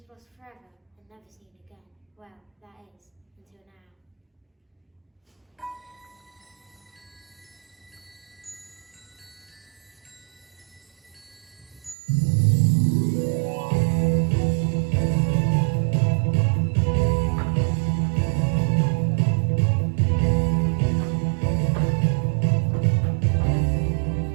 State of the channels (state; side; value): drops out; left; at 12.0 s